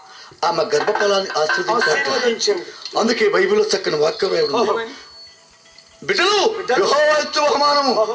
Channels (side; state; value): both; identical; correlation 1.00